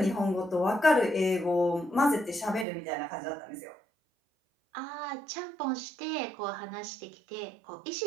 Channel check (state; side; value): drops out; left; at 2.7 s